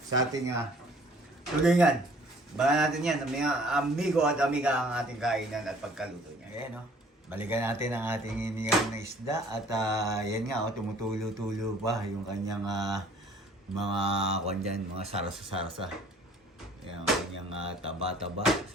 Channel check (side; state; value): both; normal; correlation 0.55